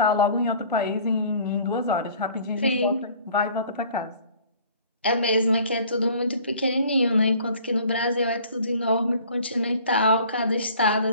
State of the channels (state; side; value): inverted; both; correlation -0.51